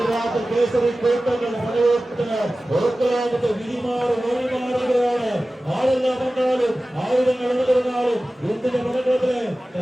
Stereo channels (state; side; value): normal; both; correlation 0.96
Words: കേസരി കൂട്ടങ്ങളുടെ പടയോട്ടത്തിന് ഓർക്കലാമത്തെ വിധിമാറുകയാണ്. ആരെല്ലാം വന്നാലും ആയുധങ്ങൾ ഉണർന്നാലും എന്തിന്റെ പടക്കത്തിലെ